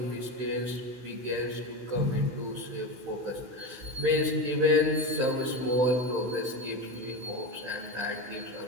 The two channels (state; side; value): late; left; 16 ms